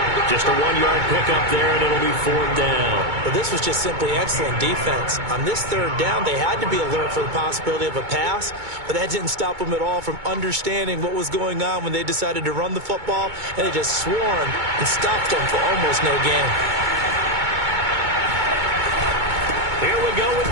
Just a 1-yard pickup there, and it'll be 4th down. But this was just simply excellent defense. On this 3rd down, they had to be alert for the possibility of a pass, but that didn't stop them at all from understanding what was going on when they decided to run the football, and they just swarmed and stopped them for almost no gain. Here we go with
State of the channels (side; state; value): left; late; 2.2 ms